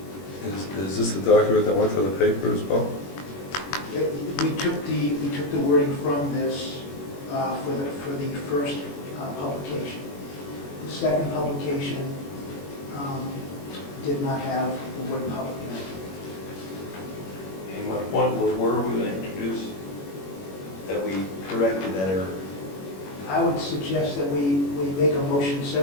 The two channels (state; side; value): late; right; 21 ms